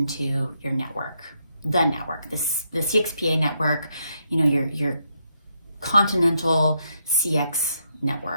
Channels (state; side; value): inverted; both; correlation -0.79